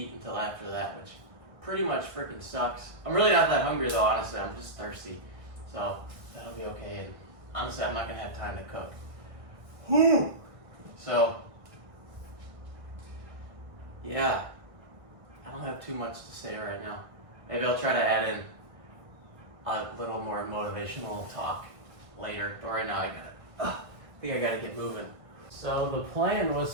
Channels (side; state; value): left; late; 1.6 ms